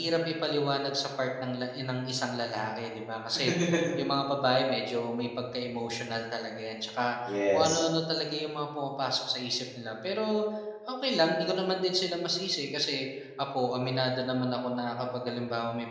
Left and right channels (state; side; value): identical; both; correlation 1.00